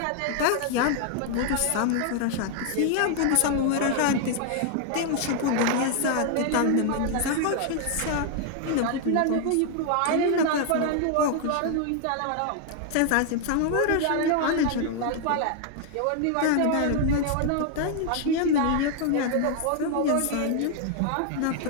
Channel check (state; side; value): different; both; correlation 0.00